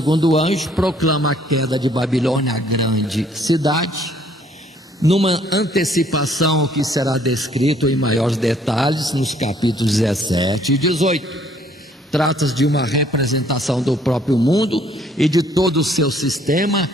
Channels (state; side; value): normal; both; correlation 0.62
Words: anjo proclama a queda de Babilônia, a grande cidade, numa antecipação ao que será descrito em maiores detalhes nos capítulos 17 e 18. Trata-se de uma representação do próprio mundo e de todo o seu sistema